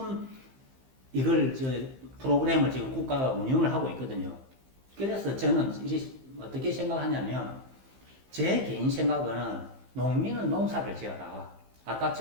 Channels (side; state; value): left; late; 15 ms